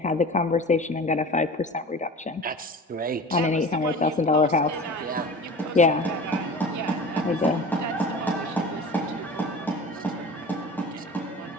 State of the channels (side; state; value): both; normal; correlation 0.37